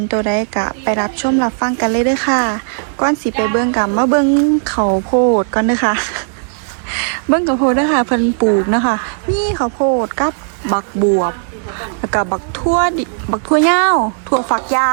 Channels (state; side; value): silent; left; digital silence